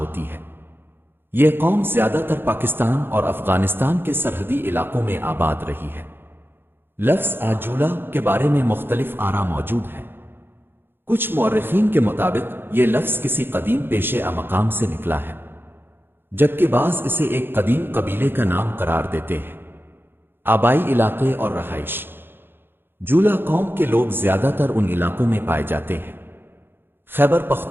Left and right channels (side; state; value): left; late; 0.10 ms